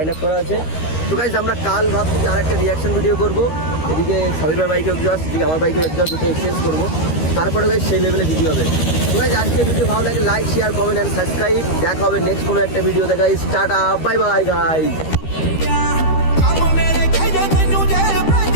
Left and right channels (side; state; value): right; late; 13 ms